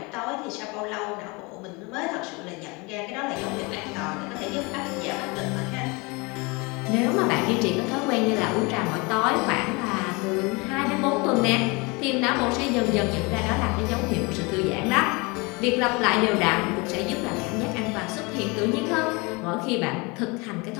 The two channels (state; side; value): quieter; right; 27.4 dB